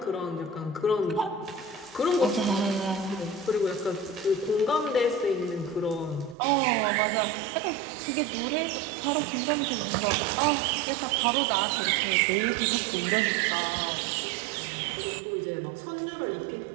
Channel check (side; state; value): left; drops out; at 6.4 s